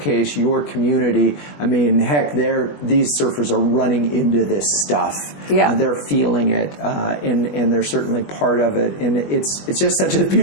your community, I mean, heck, these surfers are running into this stuff. Yeah. They're feeling it, and they're certainly part of it. And it's just such a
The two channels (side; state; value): right; late; 20 ms